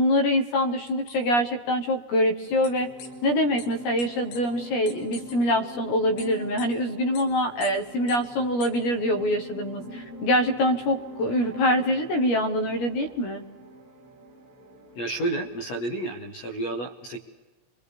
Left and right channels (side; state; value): right; late; 17 ms